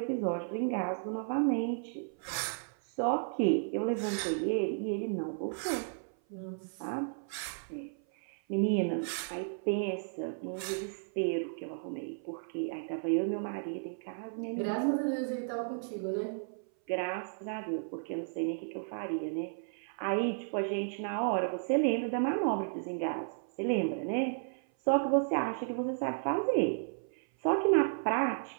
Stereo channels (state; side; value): silent; left; 55 dB below the other